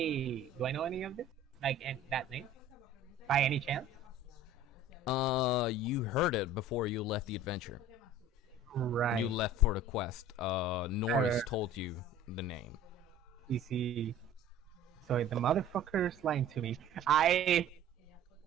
know any of this? Like, that name? By any chance? You heard it before you left the adventure. Right. You left for the quest. Norris told you the name. You see, so the motherfucker's lying to me. I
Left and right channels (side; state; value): both; normal; correlation 0.45